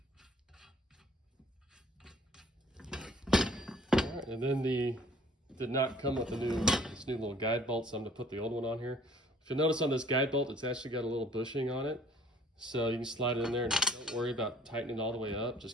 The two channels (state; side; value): normal; both; correlation 0.56